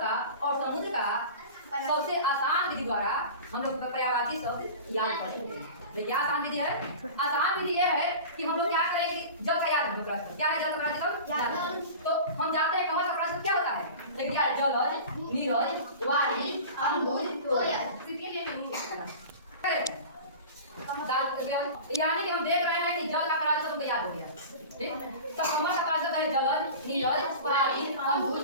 और समुद्र का सबसे आसान विधि द्वारा हम लोग पर्यायवाची शब्द याद करेंगे। तो क्या आसान विधि है? आसान विधि यह है कि हम लोग क्या करेंगे? जल का याद हम लोग क्या है? जल का प्रवाची शब्द। तो हम जानते हैं कमल का प्रवाची शब्द क्या होता है? लेकिन यार जल, नीरज, वारी, अम्बुज, तोय। यानी कि हम देख रहे हैं कि जल का प्रवाची शब्द याद हो गया। ठीक, तो कमल का प्रवाची शब्द है जल, नीरज, वारी, अम्बुज,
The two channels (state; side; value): inverted; both; correlation -0.35